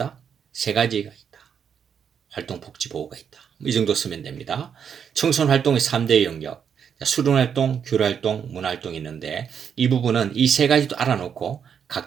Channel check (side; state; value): left; quieter; 7.6 dB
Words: 3가지가 있다. 활동복지보호가 있다. 이 정도 쓰면 됩니다. 청소년 활동의 3대 영역. 수련활동, 교류활동, 문화활동이 있는데 이 부분은 이 3가지도 알아놓고